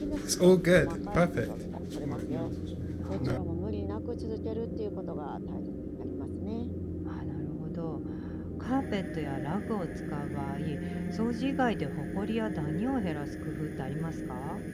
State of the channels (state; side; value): identical; both; correlation 1.00